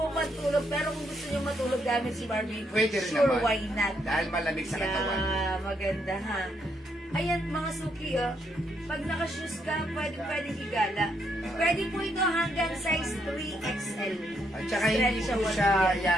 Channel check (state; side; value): normal; both; correlation 0.76